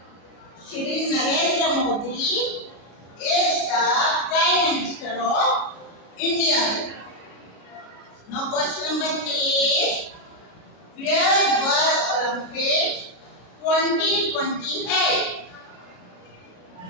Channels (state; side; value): late; right; 33 ms